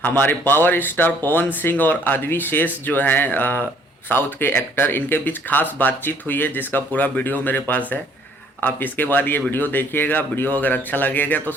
हमारे power star Pawan Singh और आदवी शेष जो हैं साउथ के एक्टर, इनके बीच खास बातचीत हुई है जिसका पूरा वीडियो मेरे पास है। आप इसके बाद ये वीडियो देखिएगा। वीडियो अगर अच्छा लगेगा तो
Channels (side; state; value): both; normal; correlation 0.61